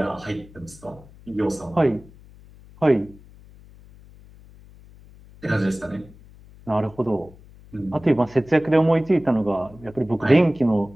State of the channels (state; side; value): noise; left; hum, 23 dB below the sound